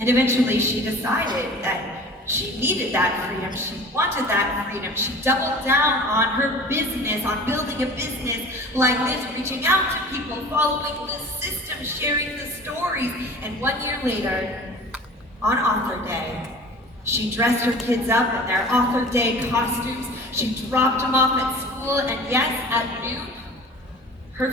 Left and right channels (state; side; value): normal; both; correlation 0.41